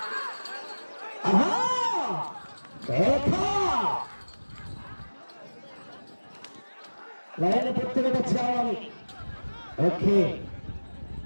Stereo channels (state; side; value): inverted; both; correlation -1.00